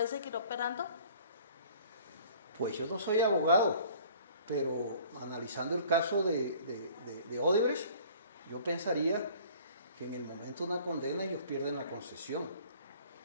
seguir operando? Pues yo no soy abogado, pero analizando el caso de Odebrecht, yo pensaría que en el momento de una condena ellos pierden la concesión.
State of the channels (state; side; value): inverted; both; correlation -0.51